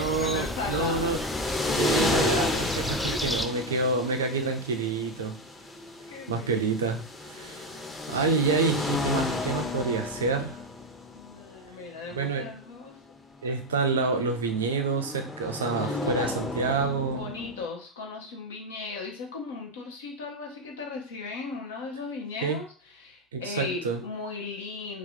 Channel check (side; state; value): both; normal; correlation 0.07